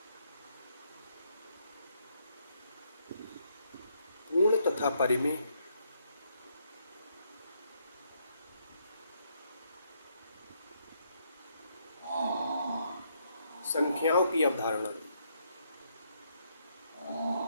पूर्ण तथा परिमेय संख्याओं की अवधारणा।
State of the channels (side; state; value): both; inverted; correlation -0.74